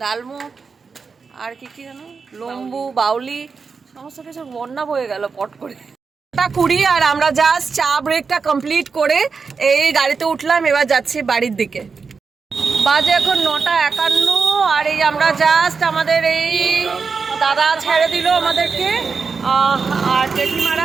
ডালমুট আর কি কি জানো, লম্বু, বাউলি, সমস্ত কিছু বন্যা বয়ে গেল পট করে। 9:20, আর আমরা জাস্ট চা ব্রেকটা কমপ্লিট করে এই গাড়িতে উঠলাম, এবার যাচ্ছি বাড়ির দিকে। বাজে এখন 9:51, আর এই আমরা জাস্ট আমাদের এই দাদা ছেড়ে দিল আমাদেরকে, আর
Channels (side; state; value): left; quieter; 5.1 dB